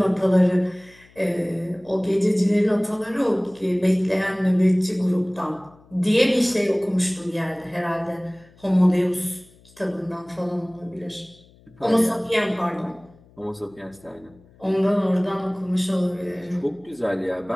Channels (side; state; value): left; noise; hum, 28 dB below the sound